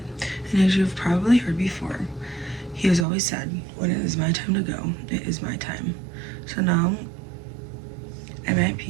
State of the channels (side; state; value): left; drops out; at 3.1 s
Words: and as you've probably heard before, he has always said, when it is my time to go, it is my time. So now, I'm at